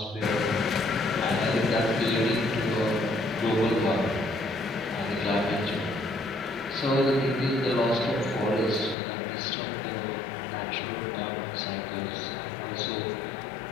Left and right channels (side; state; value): right; drops out; at 9.0 s